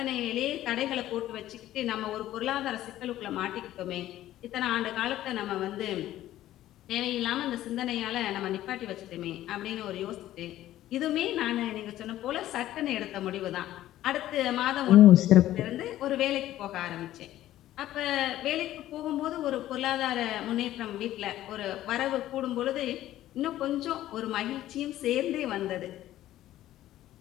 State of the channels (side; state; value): right; quieter; 13.8 dB